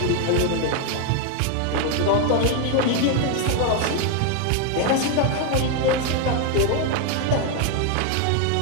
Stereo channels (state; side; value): different; both; correlation 0.01